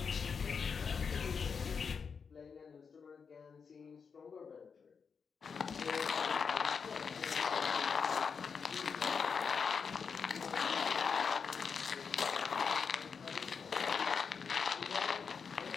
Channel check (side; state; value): right; quieter; 5.9 dB